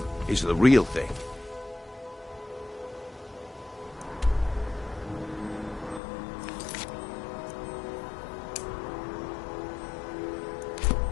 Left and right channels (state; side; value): drops out; right; at 6.0 s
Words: is the real thing.